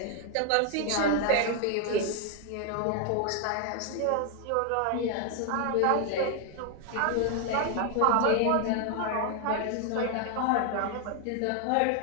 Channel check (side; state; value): both; different; correlation 0.00